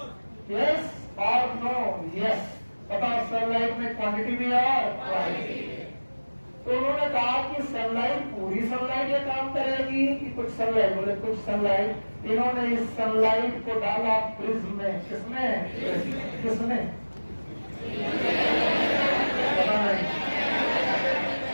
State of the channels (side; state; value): both; inverted; correlation -1.00